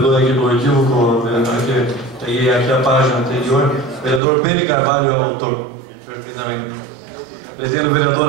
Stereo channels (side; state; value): left; drops out; at 4.2 s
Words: aqui do equívoco, vereador, que peguei aqui a página anterior. Vereador Pedro Carvalho é o autor. Perfeitamente. Pretende o